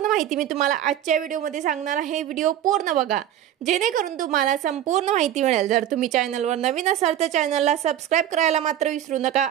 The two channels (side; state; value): left; quieter; 11.4 dB